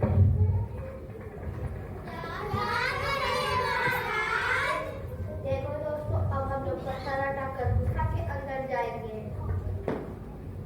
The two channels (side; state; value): both; identical; correlation 1.00